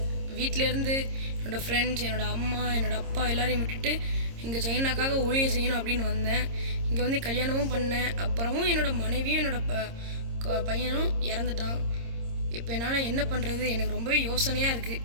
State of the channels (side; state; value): left; late; 26 ms